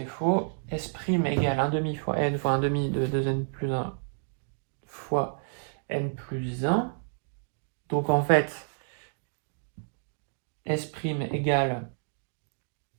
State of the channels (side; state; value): left; silent; digital silence